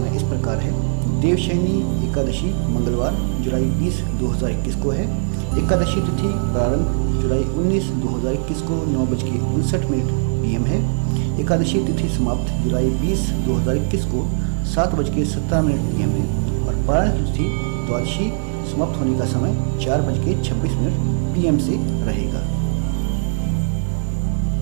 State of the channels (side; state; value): left; silent; digital silence